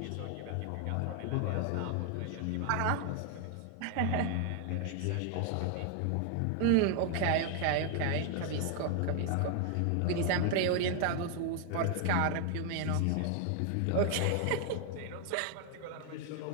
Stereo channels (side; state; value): both; different; correlation 0.00